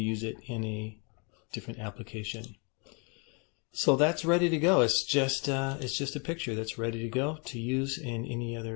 it in a different application. So that's ready to go. It's just a picture that's ready to go to use in any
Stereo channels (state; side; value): quieter; right; 34.9 dB